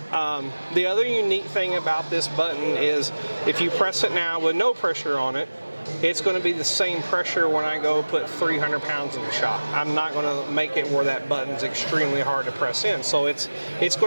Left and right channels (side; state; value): both; inverted; correlation -1.00